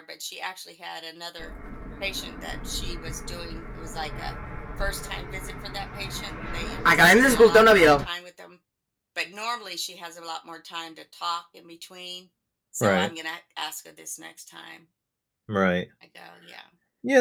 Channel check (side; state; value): both; identical; correlation 1.00